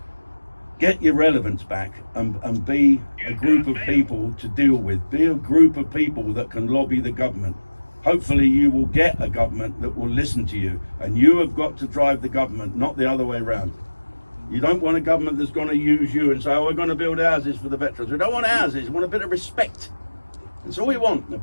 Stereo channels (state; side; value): inverted; both; correlation -1.00